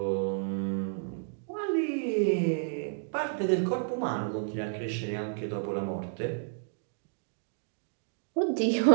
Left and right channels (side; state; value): left; silent; digital silence